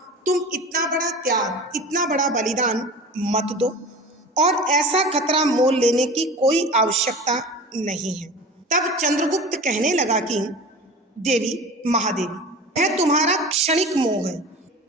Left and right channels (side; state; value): both; normal; correlation 0.35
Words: तुम इतना बड़ा त्याग, इतना बड़ा बलिदान मत दो और ऐसा खतरा मोल लेने की कोई आवश्यकता नहीं है। तब चंद्रगुप्त कहने लगा कि देवी, महादेवी, यह तुम्हारा क्षणिक मोह है।